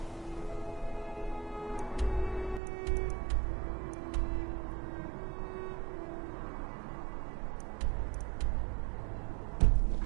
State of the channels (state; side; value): drops out; left; at 2.6 s